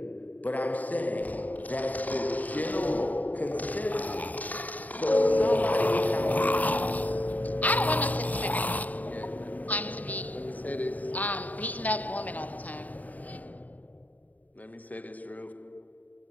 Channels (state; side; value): late; right; 0.077 ms